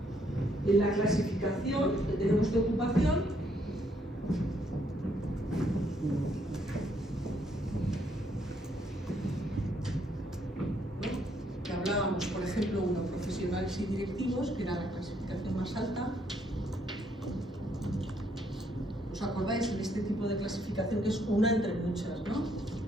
en la clasificación que tenemos de ocupación. Que hablábamos, por ejemplo, uno, profesionales y directivos, que era la clasificación más alta. ¿Os acordáis en este tipo de clasificación que es una entre muchas, ¿no?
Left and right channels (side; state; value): both; normal; correlation 0.71